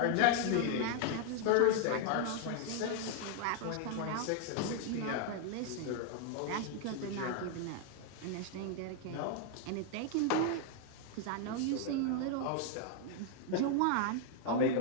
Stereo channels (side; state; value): both; different; correlation 0.00